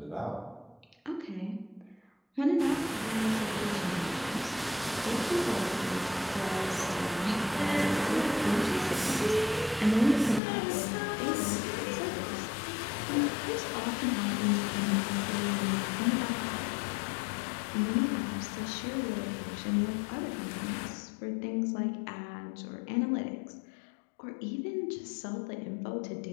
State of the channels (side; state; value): right; drops out; at 10.4 s